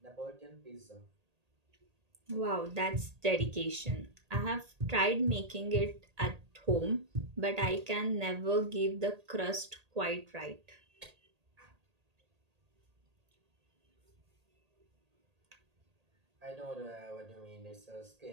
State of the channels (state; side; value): late; left; 1.8 ms